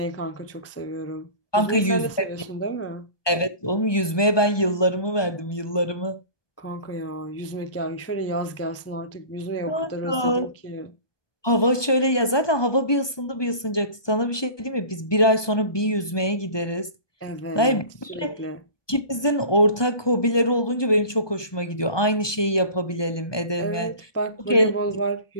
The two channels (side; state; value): right; late; 1.2 ms